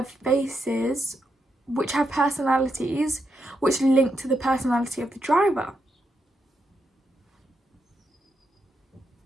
faces which have personalities which link to the personality of the driver.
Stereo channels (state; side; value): normal; both; correlation 0.83